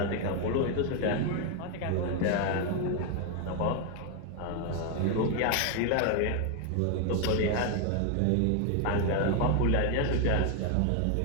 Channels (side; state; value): both; different; correlation 0.01